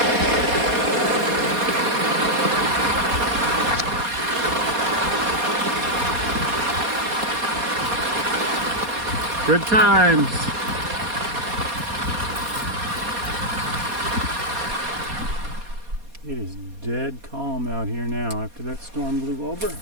Good times. It is dead calm out here now after that storm blew over.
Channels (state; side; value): late; left; 4.2 ms